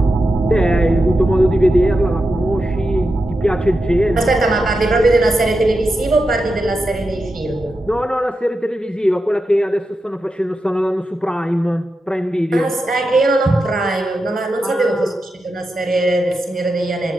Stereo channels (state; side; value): normal; both; correlation 0.89